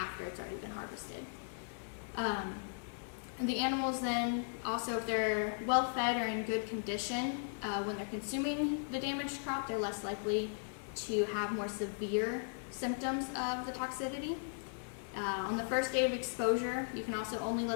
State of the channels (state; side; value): silent; right; digital silence